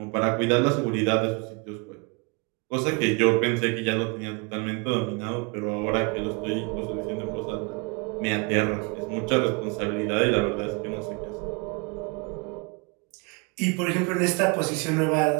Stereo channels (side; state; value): left; quieter; 31.6 dB